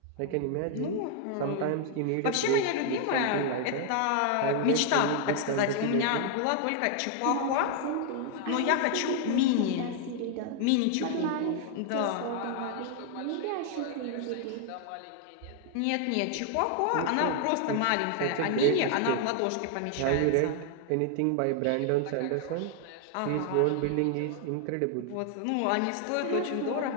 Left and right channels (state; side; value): different; both; correlation 0.00